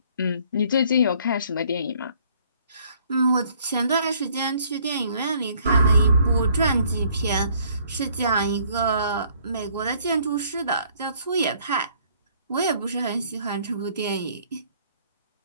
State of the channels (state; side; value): inverted; both; correlation -0.62